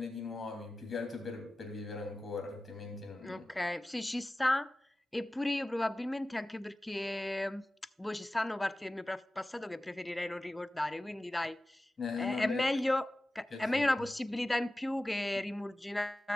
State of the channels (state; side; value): normal; both; correlation 0.95